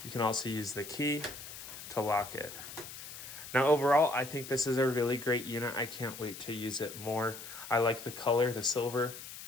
You can also use the key to lock it. Now, overall, I think this is a really great unit. I can't wait to use it more. I like the color, the silver.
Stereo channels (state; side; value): noise; left; hiss, 12 dB below the sound